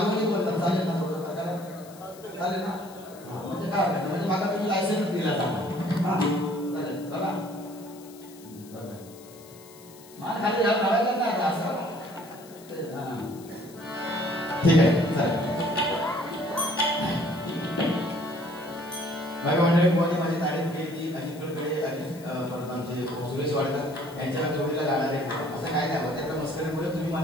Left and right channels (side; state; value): left; noise; hiss, 22 dB below the sound